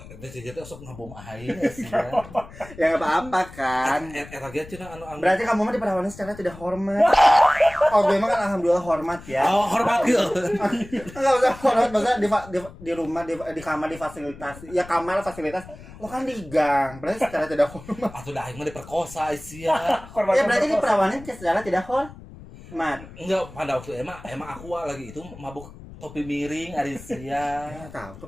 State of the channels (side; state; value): left; noise; rumble, 17 dB below the sound